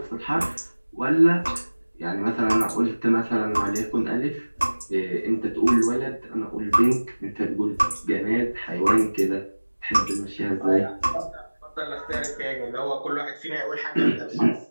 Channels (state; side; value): inverted; both; correlation -1.00